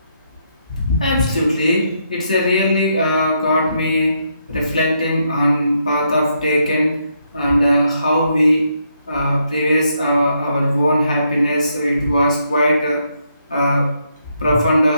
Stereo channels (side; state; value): both; inverted; correlation -0.77